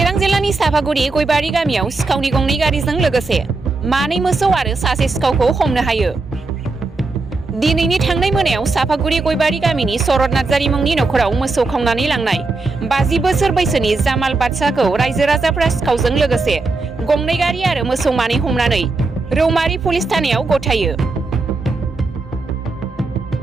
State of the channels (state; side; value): quieter; left; 3.6 dB